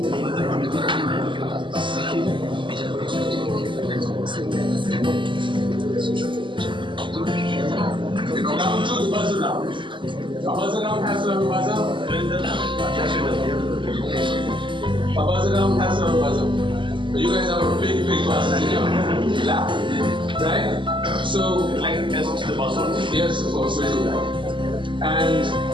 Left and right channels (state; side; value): late; left; 0.24 ms